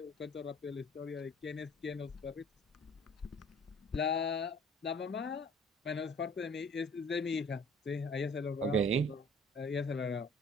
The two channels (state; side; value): normal; both; correlation 0.52